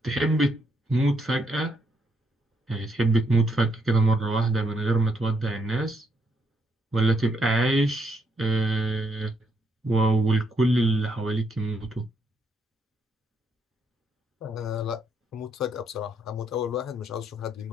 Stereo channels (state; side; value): normal; both; correlation 0.75